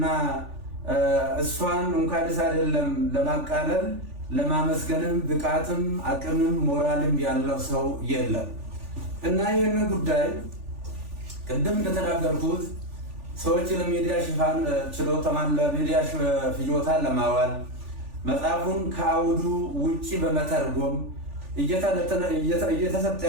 እሷን እንኳንስ አይደለም ለማቃለል ለማመስገንም ብቃትም አቅምም ሞራልም ያለው ሰው የለም። እና ይህንን ጉዳይ ቅድም እንደተናገርኩት ሰዎች ለሚዲያ ሽፋን ችሎታን ለሚዲያ ፍጆታ ለማዋል መጽሐፉን ከአውዱ ውጪ በመተርጎም እየተሰጠ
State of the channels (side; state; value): left; late; 3.4 ms